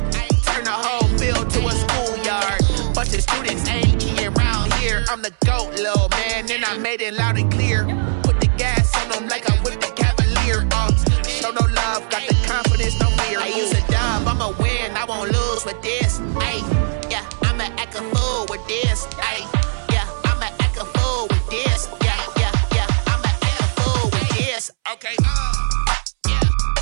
Turn the whole field to a schoolyard. Bunch of students ain't eating around here. I'm the GOAT, little man, and I made it loud and clear. Put the gas on them like I whipped the Cavalier. Show no love, got the confidence, no fear. I use a dub, I'ma win, I won't lose with this. Yeah, I'ma act a fool with this. Yeah, I'ma act a fool with this. Yeah, I'ma act a fool with this. Okay, yeah,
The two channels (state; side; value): silent; left; 66 dB below the other